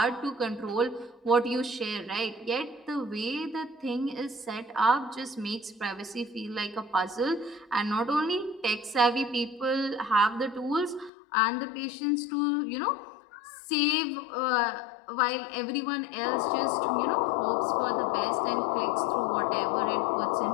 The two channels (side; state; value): right; drops out; at 11.1 s